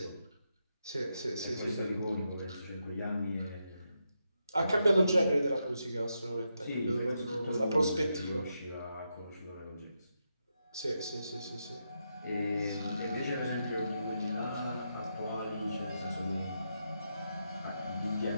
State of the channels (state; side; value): inverted; both; correlation -0.84